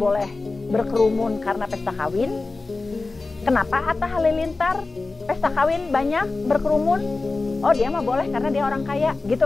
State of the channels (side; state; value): right; quieter; 3.6 dB